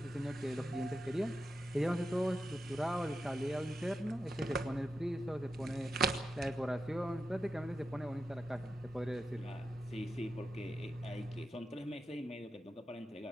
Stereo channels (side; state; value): both; normal; correlation 0.88